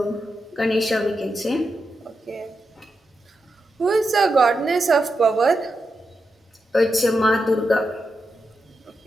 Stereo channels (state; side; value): normal; both; correlation 0.87